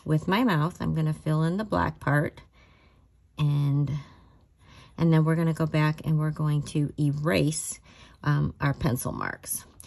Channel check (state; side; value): identical; both; correlation 1.00